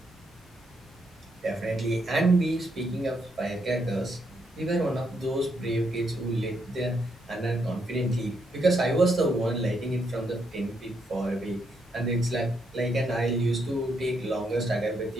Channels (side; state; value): both; normal; correlation 0.77